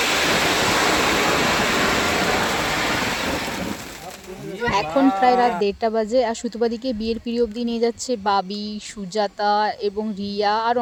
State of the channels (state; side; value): identical; both; correlation 1.00